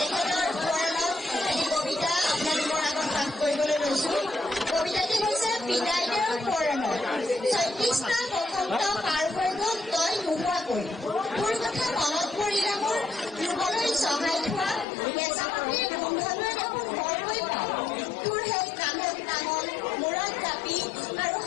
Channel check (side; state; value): right; drops out; at 14.9 s